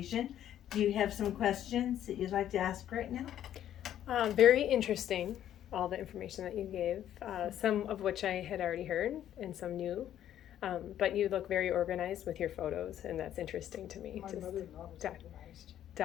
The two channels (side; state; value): right; quieter; 11.1 dB